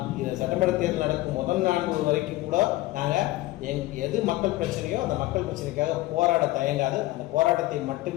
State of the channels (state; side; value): quieter; right; 18.1 dB